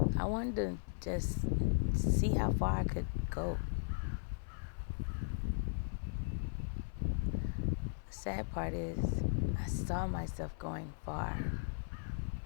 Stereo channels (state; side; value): silent; right; 53 dB below the other